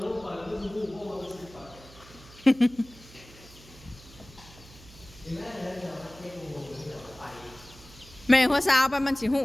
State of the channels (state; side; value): noise; right; hum, 21 dB below the sound